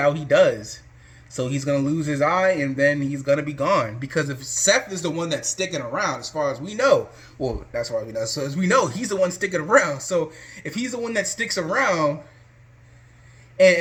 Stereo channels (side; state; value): both; identical; correlation 1.00